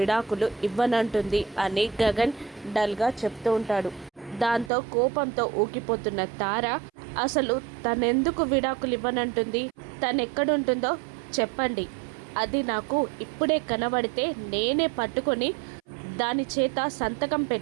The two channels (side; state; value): left; drops out; at 4.7 s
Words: ఇవ్వనంటుంది అని గగన్ డల్గా చెప్తూ ఉంటాడు. దాంతో కోపంతో ఊగిపోతున్న తార, అసలు తనెందుకు విడాకులు ఇవ్వనంటుంది, తనెక్కడుంటుందో చెప్పండి, అది నాకు ఇప్పుడే కనబడితే నేనే పట్టుకొని దాని చేత సంతకం